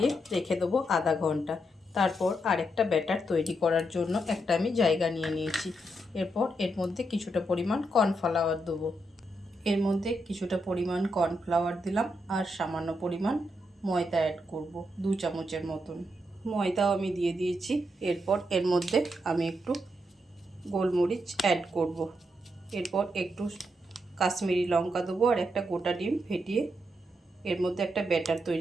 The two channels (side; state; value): both; normal; correlation 0.81